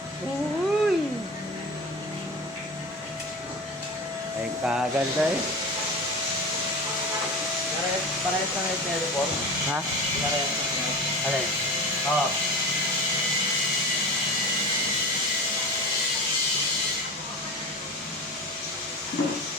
Uy! Ay kaganda eh. Parehas na ngayon teleport. Ha? Parehas na ngayon. Alin? Oo.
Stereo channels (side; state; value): both; normal; correlation 0.30